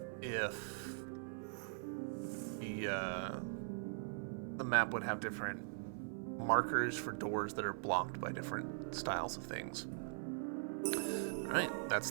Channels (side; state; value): left; silent; 50 dB below the other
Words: if the map would have different markers for doors that are blocked by different styles of things. Alright, that's